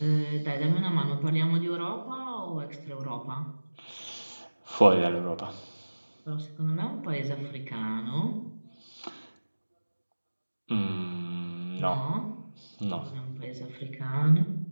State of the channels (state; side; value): inverted; both; correlation -1.00